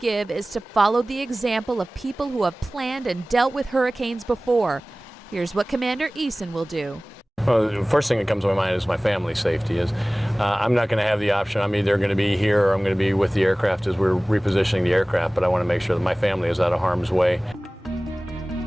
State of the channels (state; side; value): normal; both; correlation 0.98